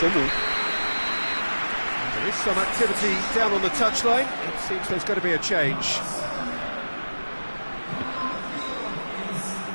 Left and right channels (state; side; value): inverted; both; correlation -1.00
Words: There is some activity down on the touchline. It seems there's going to be a change.